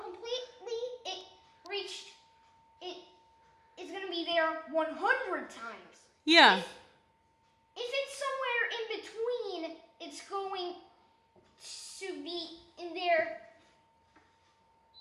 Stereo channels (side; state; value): both; identical; correlation 1.00